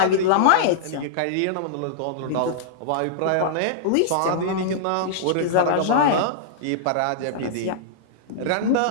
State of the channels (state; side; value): different; both; correlation -0.02